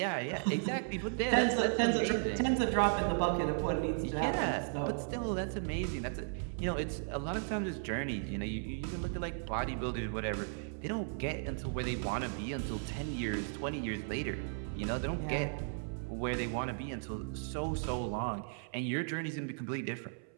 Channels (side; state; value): left; silent; 54 dB below the other